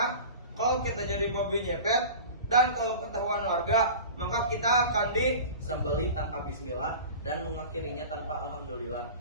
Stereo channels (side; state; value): both; inverted; correlation -0.36